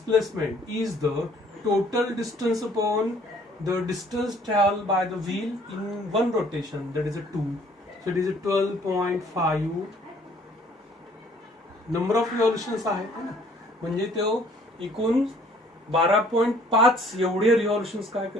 is the total distance upon the distance traveled by the wheel in one rotation, that is a 2. So it is a 12.5 number of revolutions आहे ना. म्हणजे तो एकूण 12.5 एवढे रिव्हॉल्युशन्स काय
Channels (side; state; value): both; normal; correlation 0.58